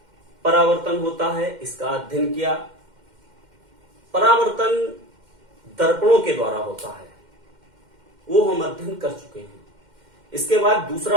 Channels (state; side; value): late; left; 2.1 ms